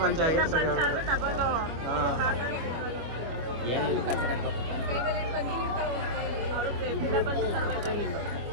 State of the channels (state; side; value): late; left; 25 ms